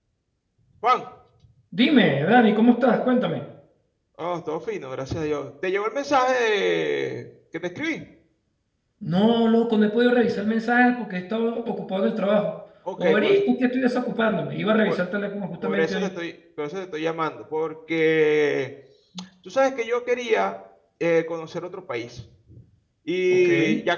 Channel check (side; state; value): both; identical; correlation 1.00